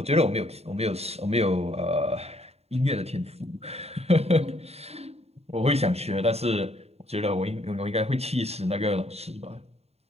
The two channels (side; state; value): left; late; 0.30 ms